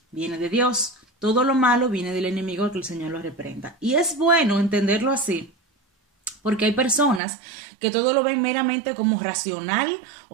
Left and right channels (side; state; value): left; drops out; at 7.2 s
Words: viene de Dios, todo lo malo viene del enemigo, que el Señor lo reprenda. Y es bueno entenderlo así, porque hay personas que todo lo ven meramente como racional